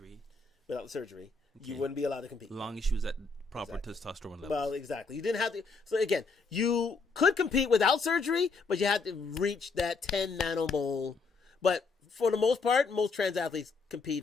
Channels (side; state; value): right; quieter; 4.3 dB